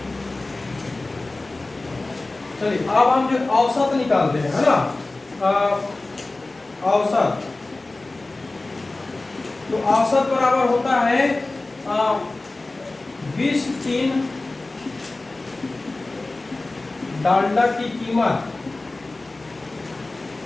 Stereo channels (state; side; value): quieter; right; 3.1 dB